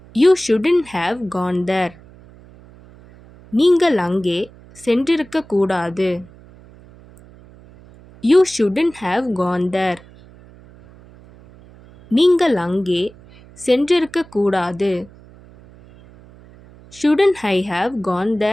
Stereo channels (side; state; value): right; noise; hum, 23 dB below the sound